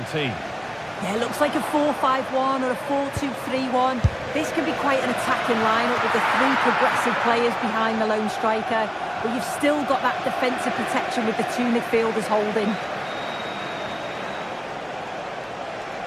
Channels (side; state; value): both; identical; correlation 1.00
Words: team. Yeah, it looks like a 4-5-1 or a 4-2-3-1. This can be quite an attacking lineup with the three progressive players behind the lone striker. But you've still got that defensive protection with the two midfielders holding.